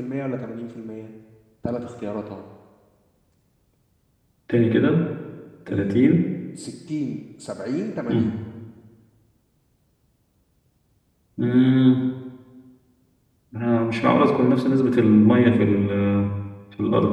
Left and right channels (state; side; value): identical; both; correlation 1.00